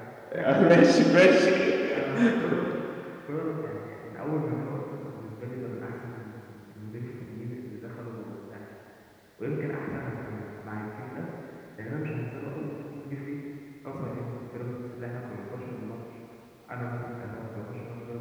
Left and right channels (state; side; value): identical; both; correlation 1.00